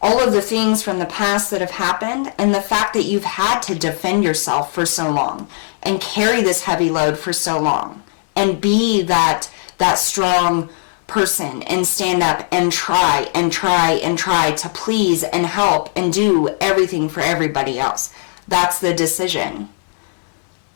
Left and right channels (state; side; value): silent; right; 68 dB below the other